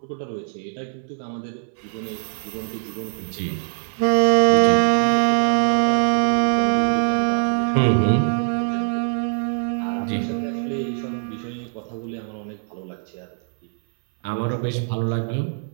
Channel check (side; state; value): left; silent; 61 dB below the other